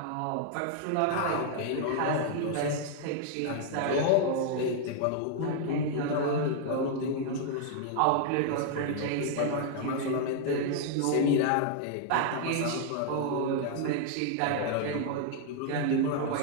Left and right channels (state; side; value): different; both; correlation 0.00